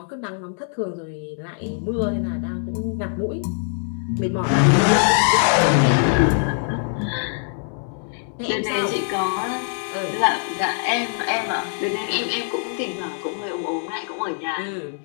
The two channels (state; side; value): silent; right; 64 dB below the other